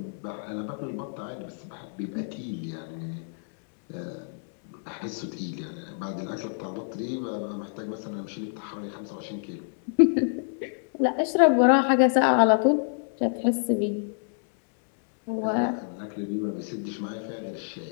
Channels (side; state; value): right; silent; digital silence